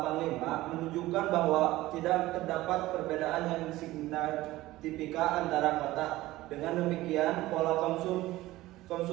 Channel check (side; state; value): left; quieter; 17.3 dB